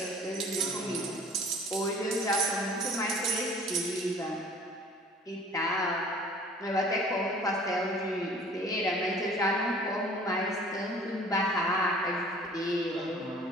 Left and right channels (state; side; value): normal; both; correlation 0.50